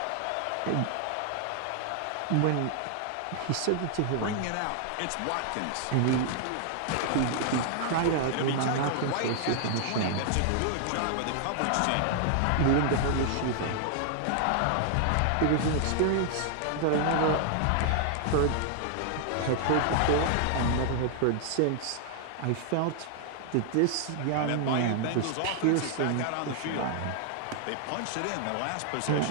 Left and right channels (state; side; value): different; both; correlation 0.00